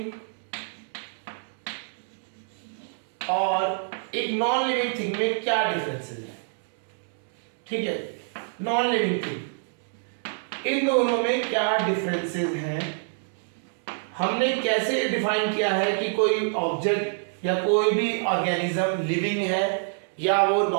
और एक नॉन लिविंग थिंग में क्या डिफरेंसेस है। ठीक है, नॉन लिविंग थिंग, इन दोनों में क्या डिफरेंसेस हैं, हमने कैसे डिफाइन किया है कि कोई ऑब्जेक्ट या कोई भी ऑर्गेनिज्म लिविंग है या वो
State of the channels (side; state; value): left; silent; 61 dB below the other